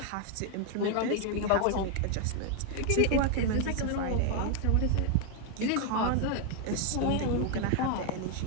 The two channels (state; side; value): different; both; correlation 0.00